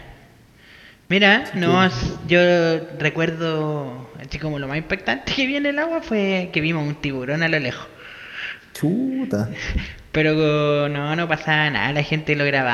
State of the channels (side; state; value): both; identical; correlation 1.00